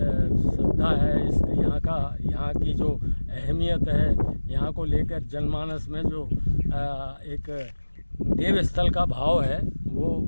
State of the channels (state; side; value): inverted; both; correlation -1.00